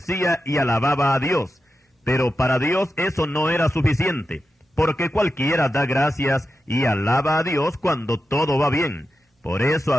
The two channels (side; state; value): both; normal; correlation 0.90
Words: y alababa a Dios. Pero para Dios eso no era suficiente, porque cualquiera da gracias y alaba a Dios cuando todo va bien. Por eso